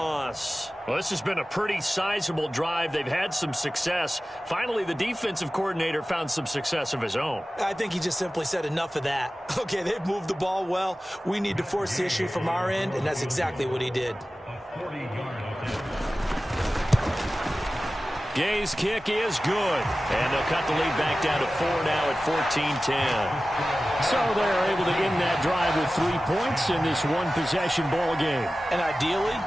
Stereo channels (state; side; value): normal; both; correlation 0.96